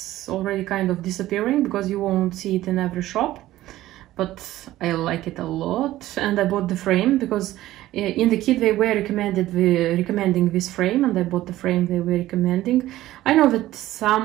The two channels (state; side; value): quieter; left; 15.2 dB